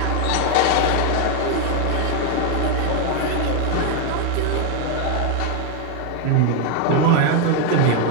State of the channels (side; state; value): both; different; correlation 0.01